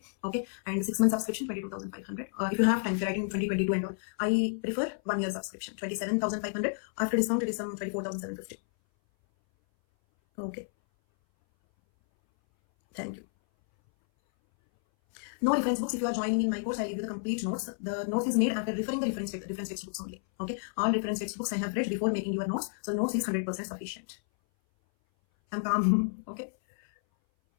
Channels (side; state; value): right; silent; 57 dB below the other